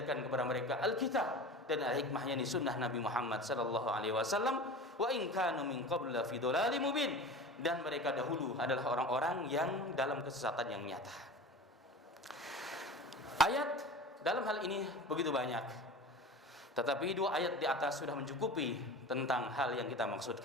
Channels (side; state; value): both; normal; correlation 0.34